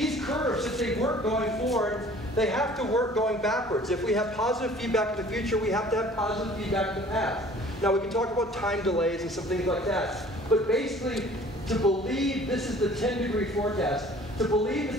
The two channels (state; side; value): normal; both; correlation 0.51